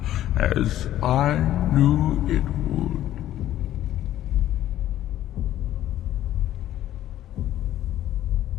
as I knew it would.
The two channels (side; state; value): right; quieter; 12.8 dB